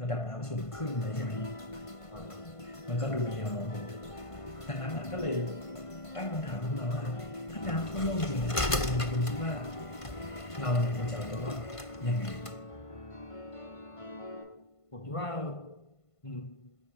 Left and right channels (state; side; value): late; right; 1.5 ms